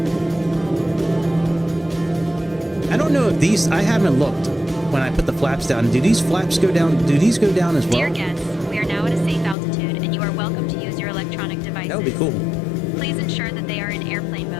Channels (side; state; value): right; drops out; at 9.6 s